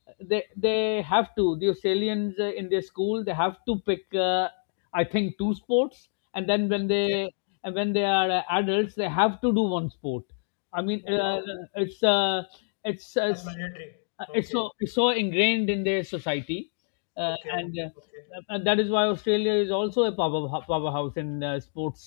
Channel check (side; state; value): right; silent; digital silence